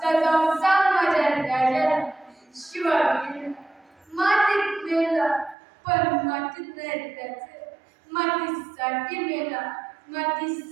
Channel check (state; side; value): drops out; left; at 5.6 s